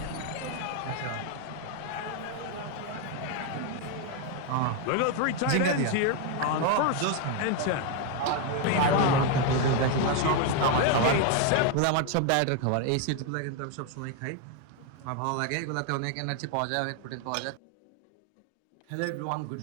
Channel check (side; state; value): both; different; correlation 0.01